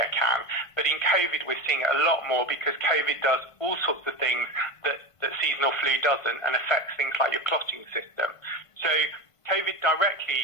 can. But in COVID, we're seeing it a lot more because COVID does all sorts of things that seasonal flu doesn't and affects things like your clotting system. So COVID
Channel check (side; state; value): right; late; 1.5 ms